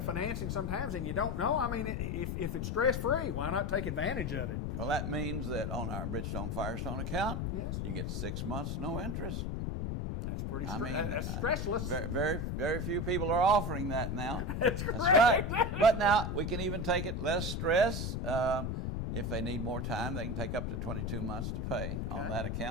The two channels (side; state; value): left; noise; rumble, 1 dB below the sound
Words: sometimes and you don't know, I mean, if it's stress-free, why not take advantage of it? Well, that means that on our Bridgestone Firestone account, yes, you get 6 months no interest. That's pretty that's stressless. Very few people are offering that now. That's correct. That's right. But now we can even take it less stress. If they need more time, they can take up to 22 months to pay on that